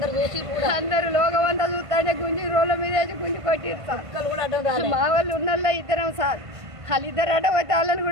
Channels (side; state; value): left; late; 1.5 ms